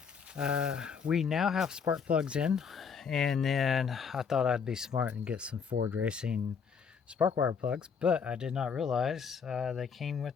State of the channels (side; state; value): right; quieter; 6.3 dB